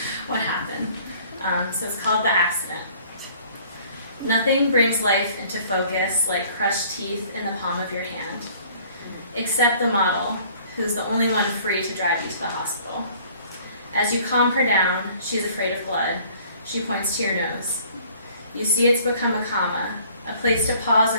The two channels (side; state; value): both; inverted; correlation -0.55